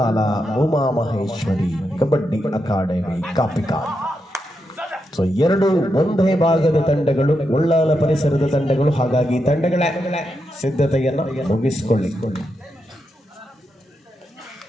ಉಮಾಮಹೇಶ್ವರಿ ಕಬಡ್ಡಿ ಅಕಾಡೆಮಿ ಕಾಪಿಕಾ. ಸೊ 2 ಒಂದೇ ಭಾಗದ ತಂಡಗಳು, ಉಳ್ಳಾಲ ಪರಿಸರದ ತಂಡಗಳು. ಹಾಗಾಗಿ ತಂಡಗಳ ಸಿದ್ಧತೆಯನ್ನು ಮುಗಿಸಿಕೊಳ್ಳಿ.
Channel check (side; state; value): both; normal; correlation 0.84